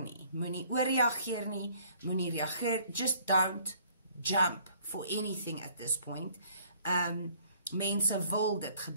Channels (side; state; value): both; inverted; correlation -0.58